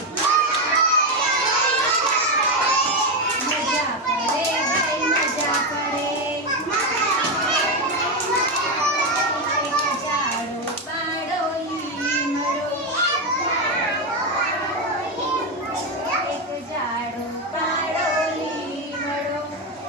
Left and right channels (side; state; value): both; normal; correlation 0.10